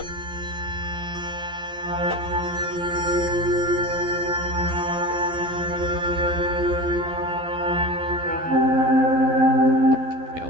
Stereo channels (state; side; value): late; left; 12 ms